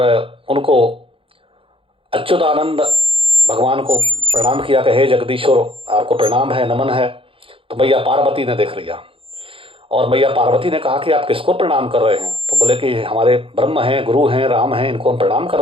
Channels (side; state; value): left; late; 0.26 ms